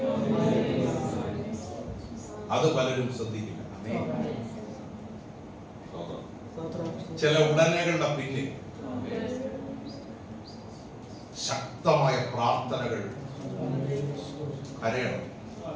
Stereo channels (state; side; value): identical; both; correlation 1.00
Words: അത് പലരും ശ്രദ്ധിക്കില്ല. ചില ഉടനെകളുടെ പിന്നിൽ ശക്തമായ പ്രാർത്ഥനകൾ. കരയണം.